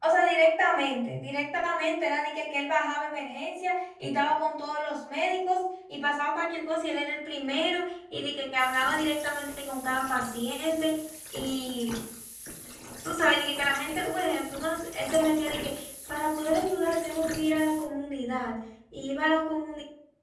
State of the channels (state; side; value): identical; both; correlation 1.00